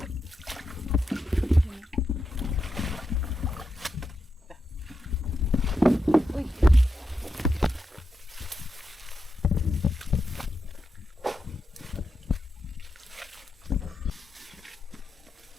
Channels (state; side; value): normal; both; correlation 0.87